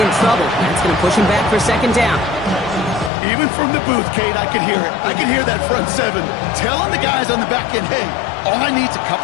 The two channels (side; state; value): right; drops out; at 3.1 s